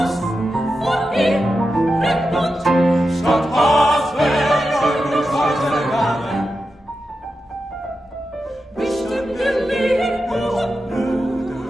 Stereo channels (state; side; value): normal; both; correlation 0.90